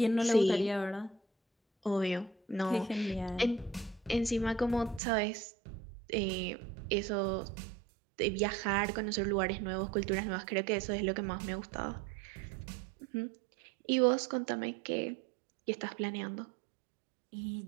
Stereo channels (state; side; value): drops out; left; at 5.0 s